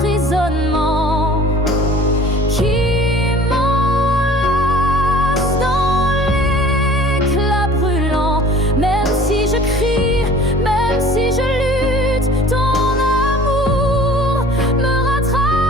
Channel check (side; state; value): both; normal; correlation 0.48